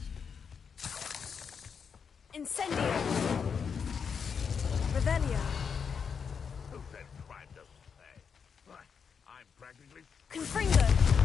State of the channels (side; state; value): right; quieter; 6.4 dB